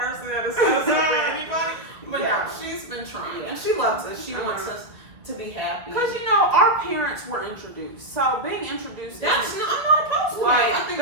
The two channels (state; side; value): late; left; 1.5 ms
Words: that is set us up for anybody. But no, she's been trying and she loves us. She wants us to be happy. Because you know, our parents were introduced, so being introduced. I'm not opposed to that. I think